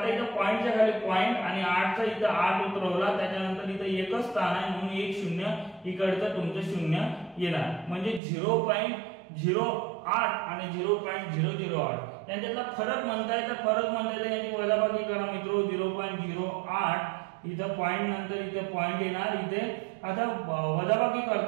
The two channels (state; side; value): drops out; left; at 8.2 s